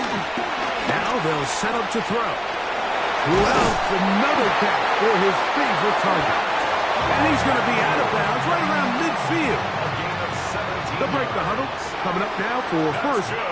Now they'll set up to throw. Who else? Another catch for his favorite target. And he's going to be out of bounds right around midfield. They'll break the huddle. Coming up now for 1st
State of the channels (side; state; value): both; identical; correlation 1.00